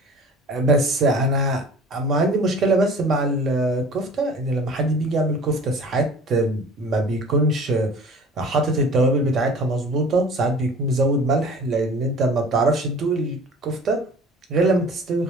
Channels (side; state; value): both; normal; correlation 0.44